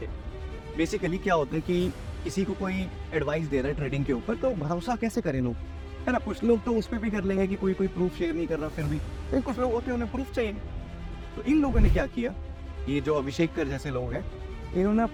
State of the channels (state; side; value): identical; both; correlation 1.00